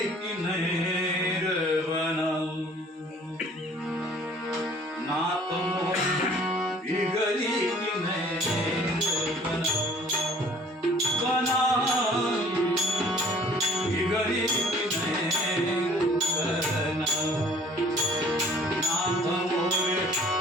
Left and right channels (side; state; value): both; normal; correlation 0.53